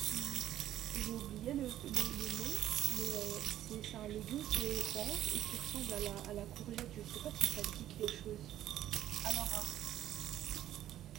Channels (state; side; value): quieter; left; 12.5 dB